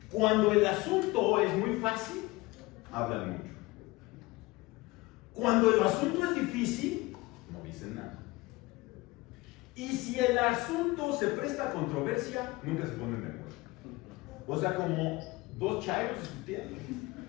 cuando el asunto es muy fácil, hablan mucho. Cuando el asunto es difícil, no dicen nada. Y si el asunto se presta a controversia, nunca se ponen de acuerdo. O sea, como dos chairos discutiendo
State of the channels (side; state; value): right; quieter; 21.5 dB